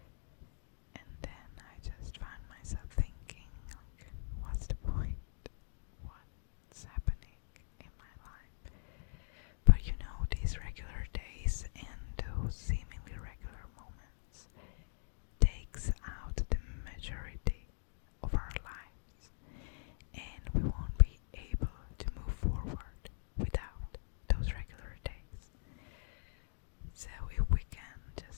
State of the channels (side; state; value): right; silent; digital silence